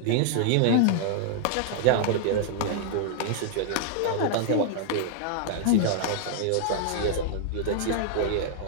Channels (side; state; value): both; different; correlation -0.01